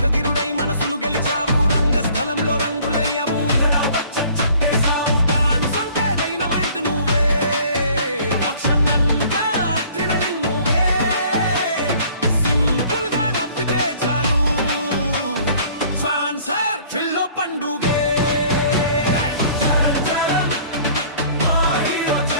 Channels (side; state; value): both; inverted; correlation -0.53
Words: మనసులు గెలిచావు, రంగస్థలంలో రంగులయ్యవు, దానిసంటే డైనమైట్ నువ్వే, యాక్షన్ అంతా అడ్రినలిన్ నువ్వే. సింపుల్ గా నవ్వితే చాలు, ట్రాన్స్ఫర్ ఫిల్లో పండుగే.